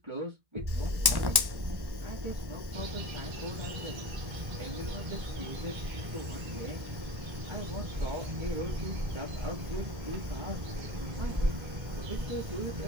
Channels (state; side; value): late; left; 1.1 ms